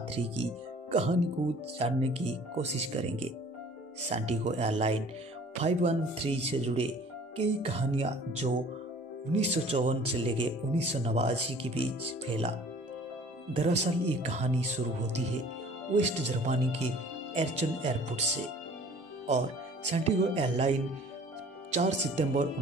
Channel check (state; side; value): normal; both; correlation 0.50